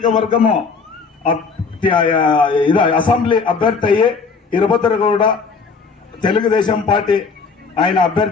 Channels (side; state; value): right; quieter; 5.0 dB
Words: అసెంబ్లీ అభ్యర్థి అయ్యి వీరభద్రగౌడ తెలుగుదేశం పార్టీ ఆయన